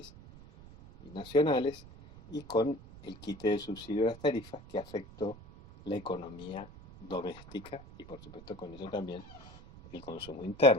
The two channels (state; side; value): noise; right; rumble, 18 dB below the sound